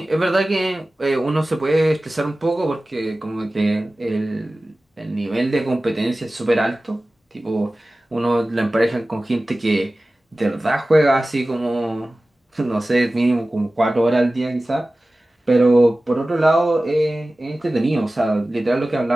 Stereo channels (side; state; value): both; normal; correlation 0.97